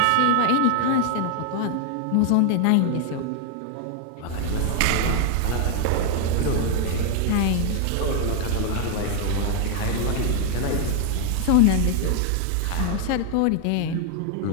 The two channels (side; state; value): both; different; correlation 0.00